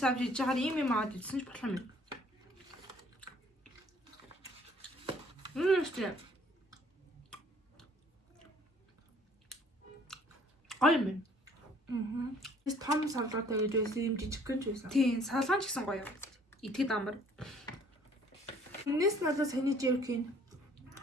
авч иж чагаар юм аваад идсэн ч болох юм. Үстэй. Аймэн. Эс том салгаатай гэж байсан юм жижиг гэнж байсан. Тийм, салгаан ч гэсэн гоё. Итгэд амар. Энэс надад саний jerky.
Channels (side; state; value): both; normal; correlation 0.58